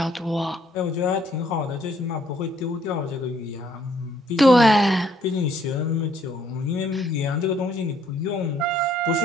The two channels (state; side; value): normal; both; correlation 0.66